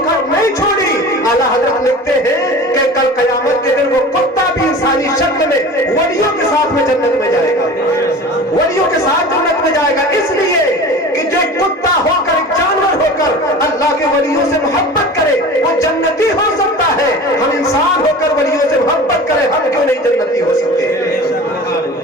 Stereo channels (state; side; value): normal; both; correlation 0.37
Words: نہیں چھوڑی، اعلیٰ حضرت لکھتے ہیں کہ کل قیامت کے دن وہ کتا بھی انسانی شکل میں ولیوں کے ساتھ میں جنت میں جائے گا. ولیوں کے ساتھ جنت میں جائے گا. اس لیے کہ جو کتا ہو کر، جانور ہو کر اللہ کے ولیوں سے محبت کرے وہ جنتی ہو سکتا ہے. ہم انسان ہو کر ولیوں سے محبت کریں، ہم کیوں نہیں جنتی ہو سکتے؟